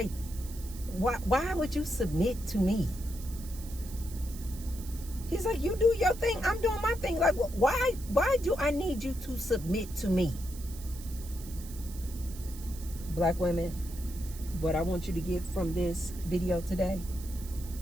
why would you submit to me? He's like, you do your thing, I'm doing my thing. Like, why do I need you to submit to me? Black women, what I want you to get from this video today,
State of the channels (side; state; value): right; noise; hiss, 16 dB below the sound